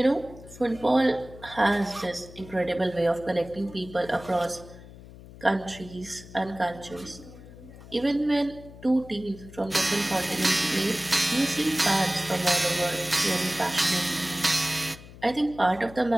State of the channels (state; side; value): noise; left; hum, 18 dB below the sound